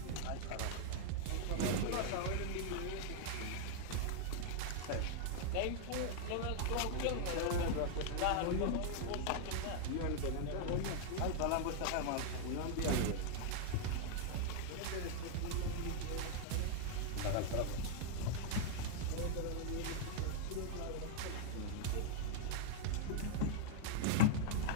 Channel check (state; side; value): different; both; correlation -0.01